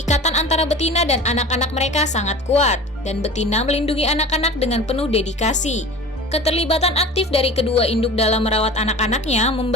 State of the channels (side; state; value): both; normal; correlation 0.37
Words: antara betina dan anak-anak mereka sangat kuat, dan betina melindungi anak-anak dengan penuh dedikasi. Keterlibatan aktif dari kedua induk dalam merawat anak-anaknya